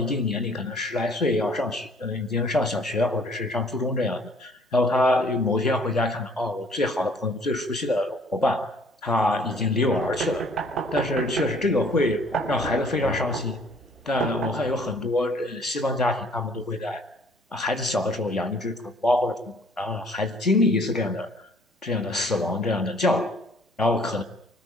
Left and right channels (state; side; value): normal; both; correlation 0.57